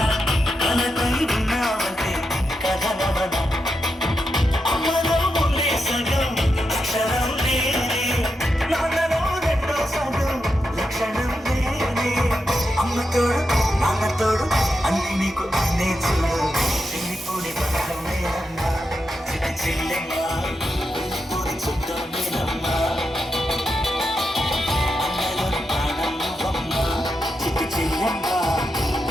కలకై ఉన్నావంటే కథనవన అమ్మలో ముందే సగం అక్షరం లేనే నాన్నలో రెండో సగం లక్షణం లేనే అమ్మ తోడు నాన్న తోడు అన్ని నీకు అన్నే చూడు చెల్లిపోని బంధం నేనమ్మా చిటి చెల్లెమ్మా వెళ్ళిపోని చుట్టం నేనమ్మా అన్నలోని ప్రాణం నువ్వమ్మా చిటి చెల్లెమ్మా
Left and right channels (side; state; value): both; normal; correlation 0.86